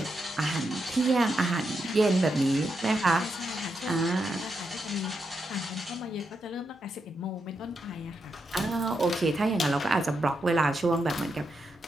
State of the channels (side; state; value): both; normal; correlation 0.84